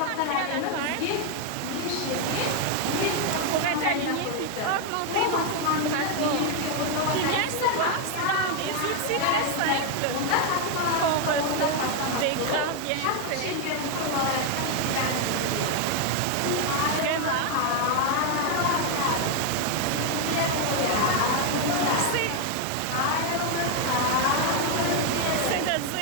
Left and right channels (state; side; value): different; both; correlation 0.01